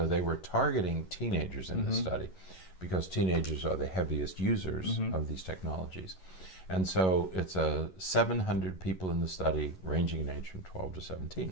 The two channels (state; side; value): late; right; 11 ms